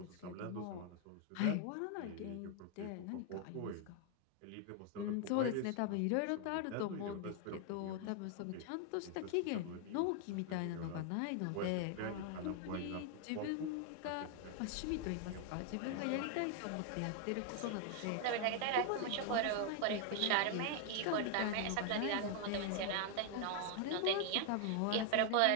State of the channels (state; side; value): different; both; correlation 0.00